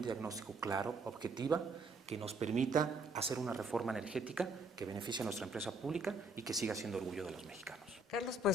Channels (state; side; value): normal; both; correlation 0.67